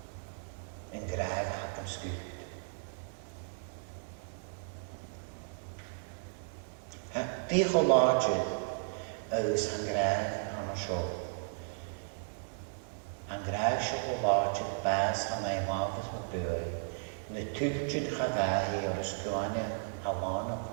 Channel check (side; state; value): left; silent; digital silence